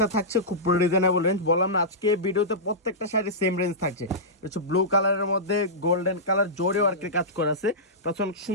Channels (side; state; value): both; normal; correlation -0.15